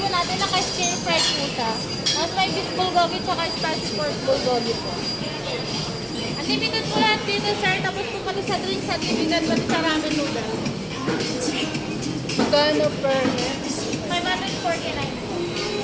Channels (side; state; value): both; identical; correlation 1.00